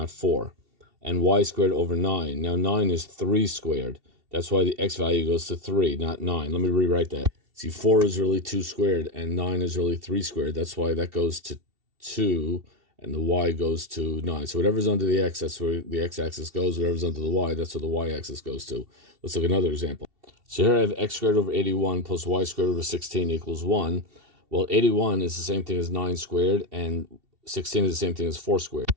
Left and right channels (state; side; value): late; left; 2.7 ms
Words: 4. And y squared over 9. Now 9 is 3 squared. That's why the x value goes to 3, not 9. Let me rewrite that. See, 4 is really 2 squared, and 9 is really 3 squared. That's why that goes to 2, and the y goes to 9. So whatever's under the x, that's where the x-axis goes. Whatever's under the y, that's where the y-axis goes to. Let's look at another example. So here I have x squared over 81 plus y squared over 16 equals 1. Well, 81 is the same thing as 9 squared, and 16 is the same thing as 4 squared.